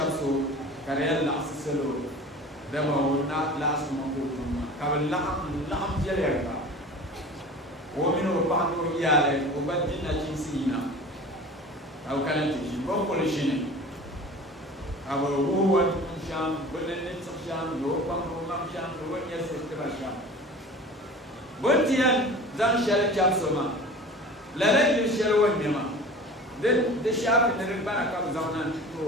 karel la aselo de ma na last month ka la jere ka o mino pa no yale o badina chinsina au kana tishi ko polishine our wood sham, bullet sham, no pump sham, no one yes, sham. Buntian, then shall chapsoma. Let it shall one yama. Then the sharp in the ribbon comes on and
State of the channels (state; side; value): normal; both; correlation 0.39